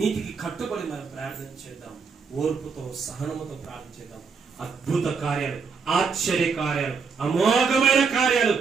కట్టుబడి మనం ప్రార్థన చేద్దాం. ఓర్పుతో సహనముతో ప్రార్థన చేద్దాం. అద్భుత కార్యాలు, ఆశ్చర్య కార్యాలు, అమోఘమైన కార్యాలు,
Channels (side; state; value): left; quieter; 5.5 dB